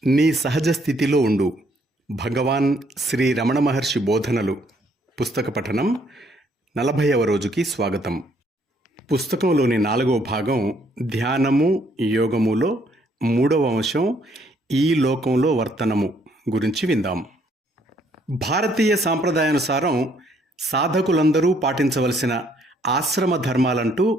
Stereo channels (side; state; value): both; normal; correlation 0.67